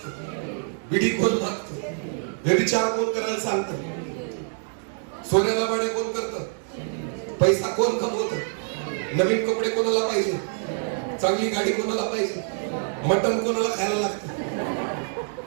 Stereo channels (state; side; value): silent; left; 61 dB below the other